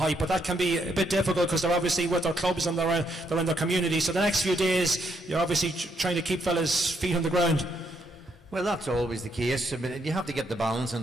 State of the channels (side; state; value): both; normal; correlation 0.75